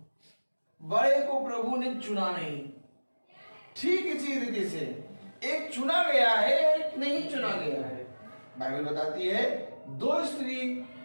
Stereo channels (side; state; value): both; inverted; correlation -1.00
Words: बड़े को प्रभु ने चुना नहीं। ठीक इसी रीति से एक चुना गया है, एक नहीं चुना गया है। बाइबल बताती है 2 स्त्री